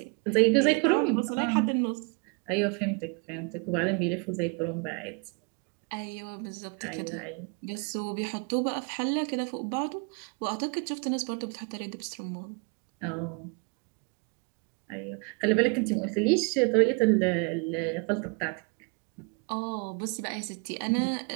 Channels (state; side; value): quieter; left; 33.5 dB